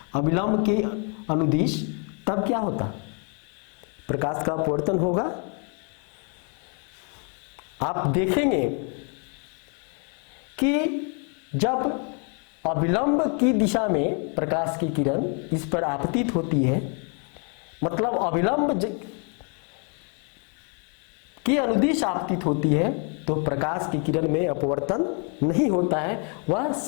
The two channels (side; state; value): right; quieter; 38.8 dB